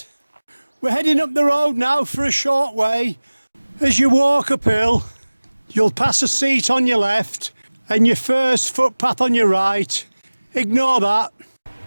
We're heading up the road now for a short way. As you walk uphill, you'll pass a seat on your left and your first footpath on your right. Ignore that.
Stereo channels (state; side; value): inverted; both; correlation -1.00